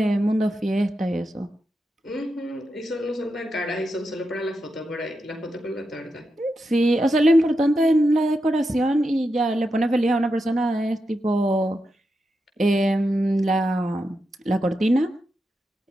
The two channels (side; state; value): both; normal; correlation 0.87